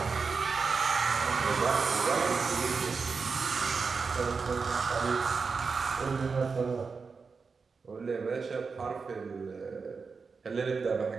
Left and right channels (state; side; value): quieter; left; 5.0 dB